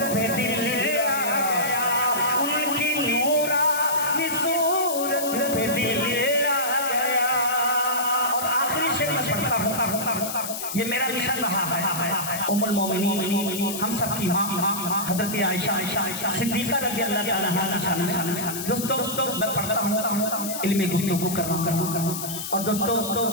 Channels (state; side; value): noise; left; hiss, 6 dB below the sound